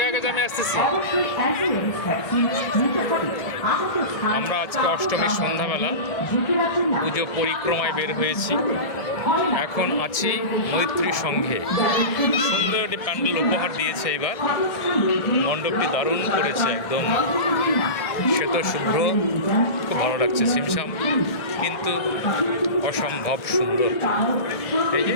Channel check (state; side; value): late; right; 1.7 ms